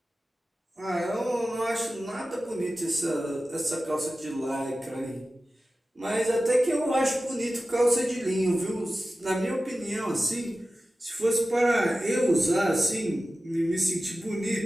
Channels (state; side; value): normal; both; correlation 0.95